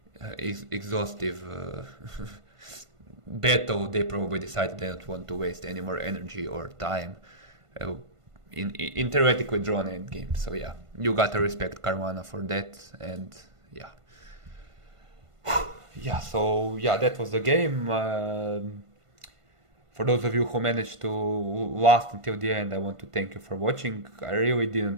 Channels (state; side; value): late; left; 1.5 ms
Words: exhaustive battle, they probably decided they don't want to waste any more energy or time in theoretically drawn endgame. So yeah, you gotta respect Caruana for that, and yeah. Yeah, so yeah, that was the game. For those of you who managed to last until the end, I want to thank you for watching. I really